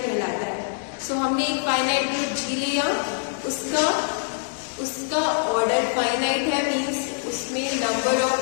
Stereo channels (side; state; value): right; silent; digital silence